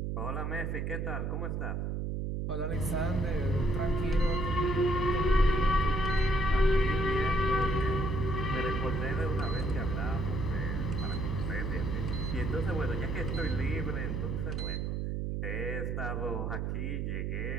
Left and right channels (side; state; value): right; noise; hum, 1 dB below the sound